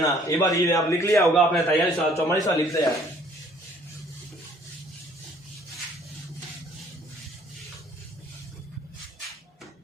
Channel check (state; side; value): normal; both; correlation 0.58